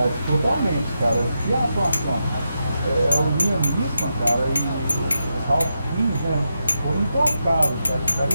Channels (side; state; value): both; inverted; correlation -0.86